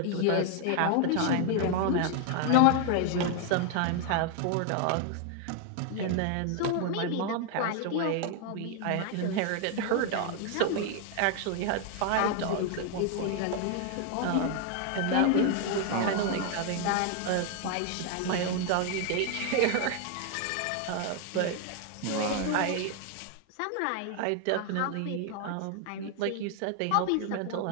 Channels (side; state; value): both; different; correlation 0.00